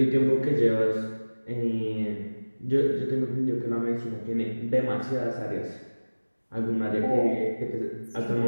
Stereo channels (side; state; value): both; inverted; correlation -1.00